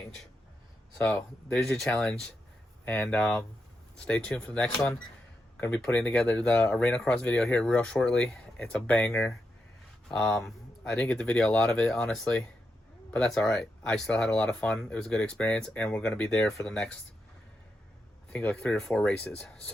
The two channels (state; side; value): normal; both; correlation 0.85